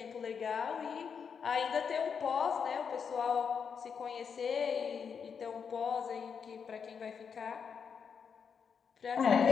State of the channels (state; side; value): quieter; right; 6.6 dB